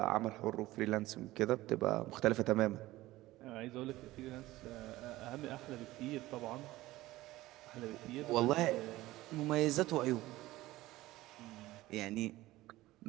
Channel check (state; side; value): quieter; left; 17.4 dB